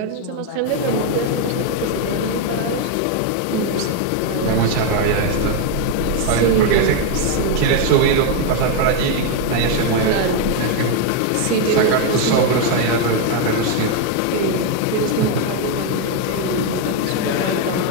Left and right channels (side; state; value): both; different; correlation 0.01